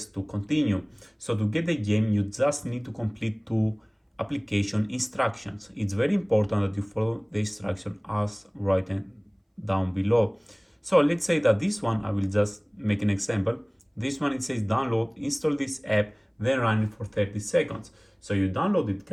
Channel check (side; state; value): both; identical; correlation 1.00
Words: to continue. So to get the game, you just need to complete 2 application instructions. It's very important that you follow the instruction as written down below. So let's say that this one, I will just make an example. This one, it says download, install this app, then run it for 30 seconds. So you download it